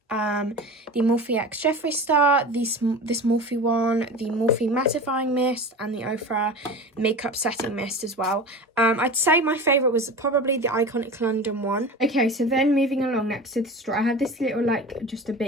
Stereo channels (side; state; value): both; normal; correlation 0.32